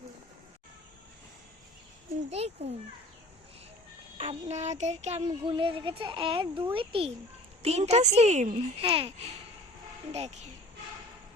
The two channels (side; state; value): both; normal; correlation 0.47